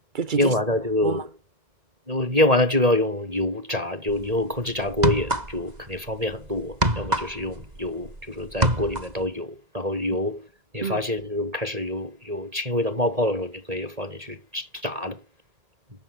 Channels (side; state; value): left; late; 1.8 ms